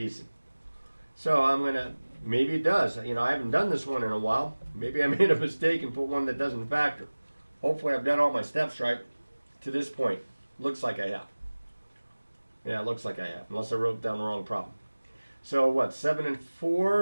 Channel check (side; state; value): both; inverted; correlation -1.00